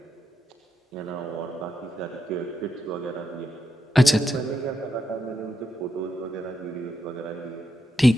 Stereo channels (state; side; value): normal; both; correlation 0.84